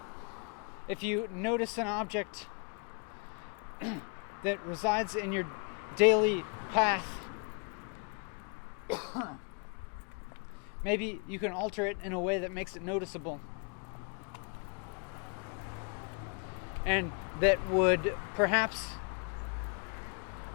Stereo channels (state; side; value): quieter; right; 37.2 dB